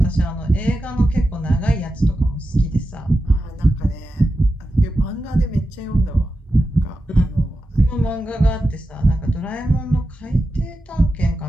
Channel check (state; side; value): normal; both; correlation 0.91